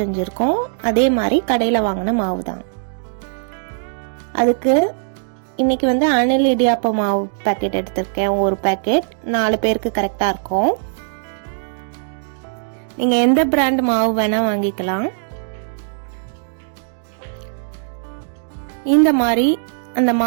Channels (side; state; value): left; silent; digital silence